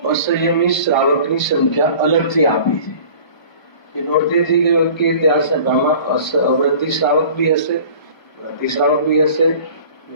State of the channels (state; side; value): late; right; 1.2 ms